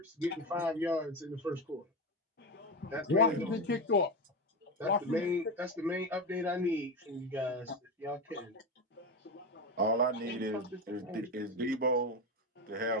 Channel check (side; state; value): both; normal; correlation 0.17